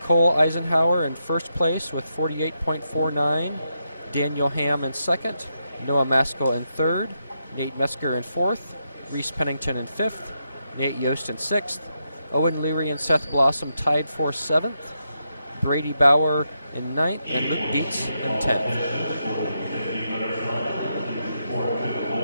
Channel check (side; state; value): both; inverted; correlation -0.83